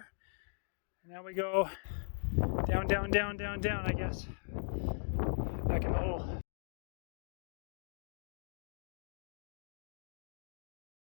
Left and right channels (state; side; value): silent; right; digital silence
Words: And now we go down, down, down, down, down, I guess. Back in the hole.